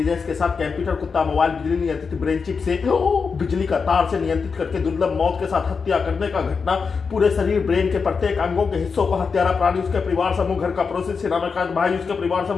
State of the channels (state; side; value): quieter; right; 5.3 dB